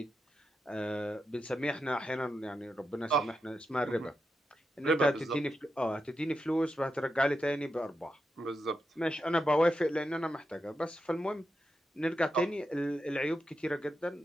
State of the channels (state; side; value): normal; both; correlation 0.87